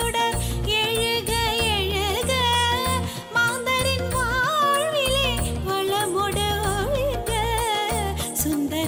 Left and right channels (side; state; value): both; identical; correlation 1.00